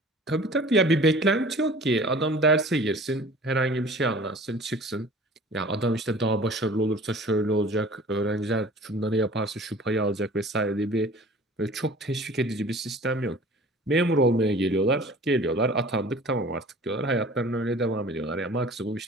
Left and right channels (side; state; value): both; normal; correlation 0.46